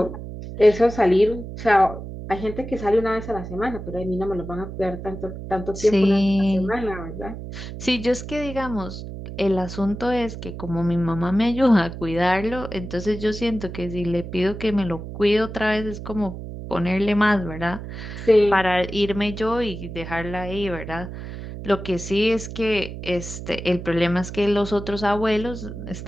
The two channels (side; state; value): right; noise; hum, 10 dB below the sound